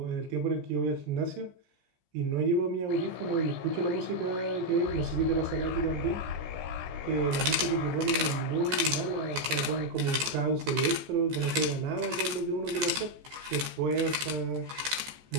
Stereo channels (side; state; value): left; late; 14 ms